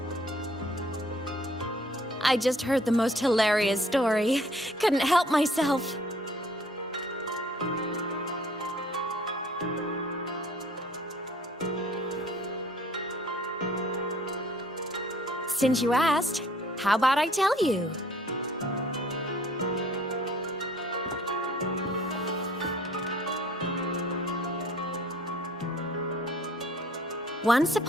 I just heard the most hilarious story. Couldn't help myself. Since you asked, how about I tell you? Once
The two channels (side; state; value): both; normal; correlation 0.56